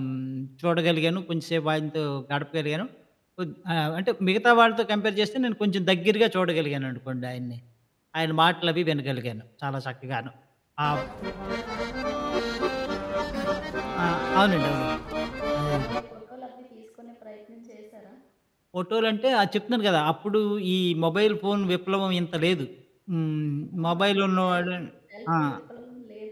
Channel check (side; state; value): both; identical; correlation 1.00